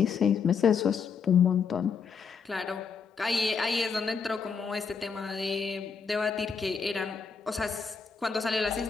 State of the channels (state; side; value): quieter; right; 5.8 dB